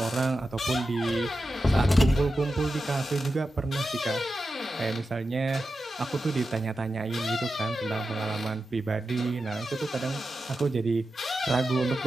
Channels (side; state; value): both; normal; correlation 0.91